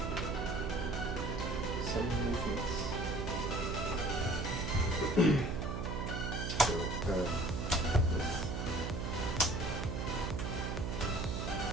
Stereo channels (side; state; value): right; noise; hum, 2 dB below the sound